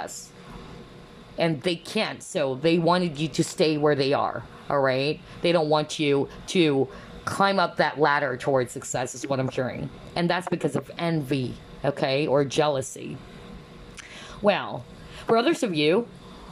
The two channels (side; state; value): both; identical; correlation 1.00